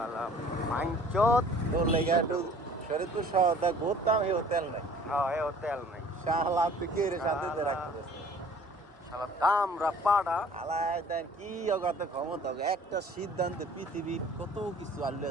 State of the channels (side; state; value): both; normal; correlation 0.51